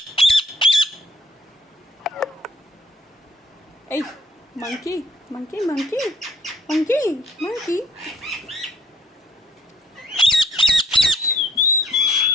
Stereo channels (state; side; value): normal; both; correlation 0.62